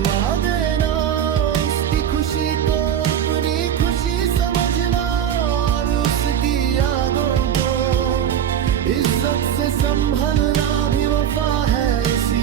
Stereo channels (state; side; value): quieter; left; 9.5 dB